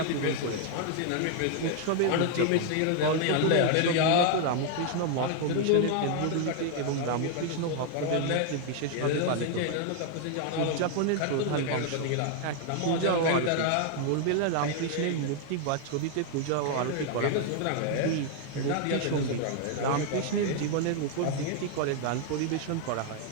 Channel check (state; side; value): different; both; correlation 0.00